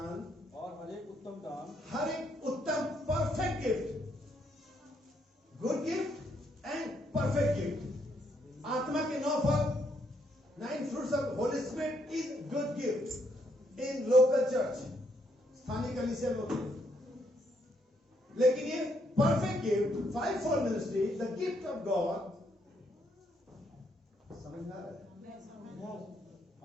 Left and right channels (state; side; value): normal; both; correlation 0.74